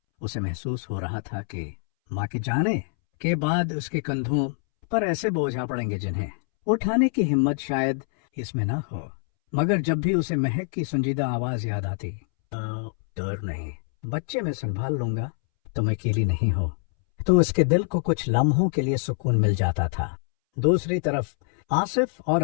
उसे महसूस हो रहा था कि माँ के जाने के बाद उसके कंधों पर ऐसे बोझ आ पड़ेंगे जिन्हें उठाने की हिम्मत शायद इसमें न हो। मगर जब भी उसे महक की संजीदा आवाज याद आती, डर नहीं, बच्चे मैं संभाल लूंगा, तुम अकेली नहीं हो, तो उसके दिल को कुछ लम्हों के लिए सुकून मिल जाता था। दूसरी तरफ आसिफ और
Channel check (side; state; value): right; silent; 62 dB below the other